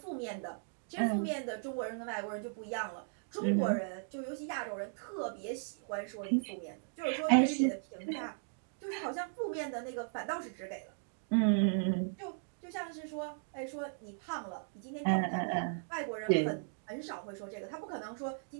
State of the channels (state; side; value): silent; left; digital silence